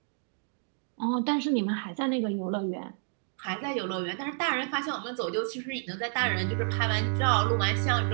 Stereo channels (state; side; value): silent; left; digital silence